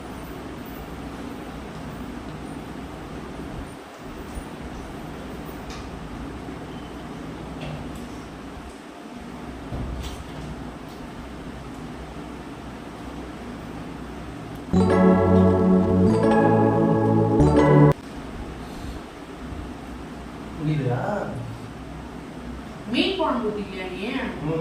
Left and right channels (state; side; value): identical; both; correlation 1.00